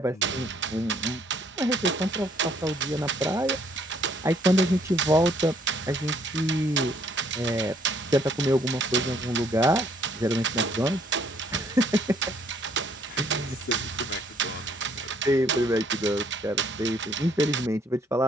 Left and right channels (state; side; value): normal; both; correlation 0.65